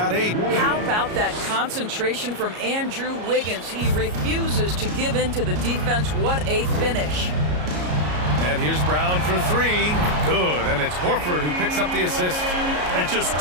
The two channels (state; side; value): late; left; 33 ms